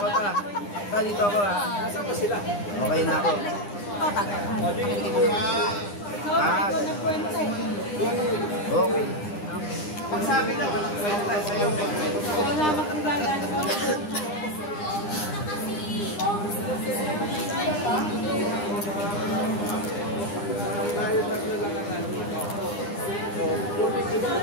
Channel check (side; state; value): right; late; 9.9 ms